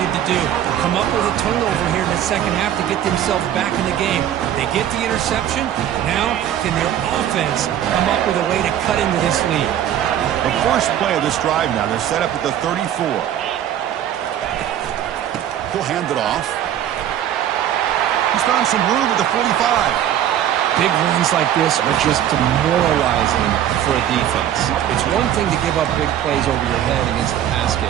to do. Come up with a turnover here in the second half to get themselves back in the game. They get the interception. Now, can their offense come up with a way to cut into this lead? The first play of this drive now, they're set up at the 34. He'll hand it off. He's found some room at the 45. Big runs like this are just demoralizing for a defense. It's one thing to give up big plays over your head against the pass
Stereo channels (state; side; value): quieter; left; 10.9 dB